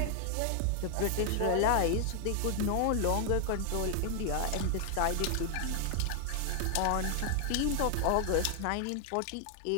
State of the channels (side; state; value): both; different; correlation 0.00